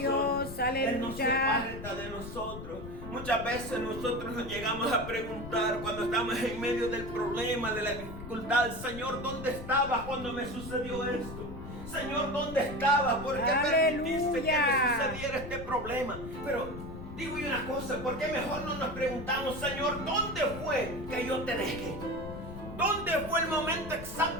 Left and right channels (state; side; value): noise; left; rumble, 10 dB below the sound